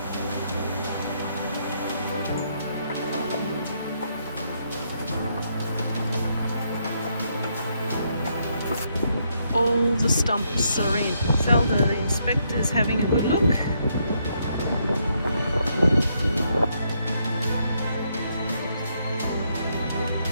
All the stumps are in. Zelda, the inspector's having a good look.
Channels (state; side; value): inverted; both; correlation -0.75